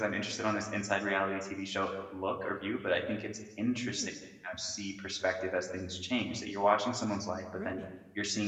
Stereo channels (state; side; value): identical; both; correlation 1.00